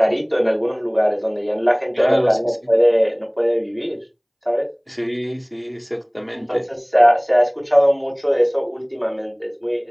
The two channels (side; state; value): both; identical; correlation 1.00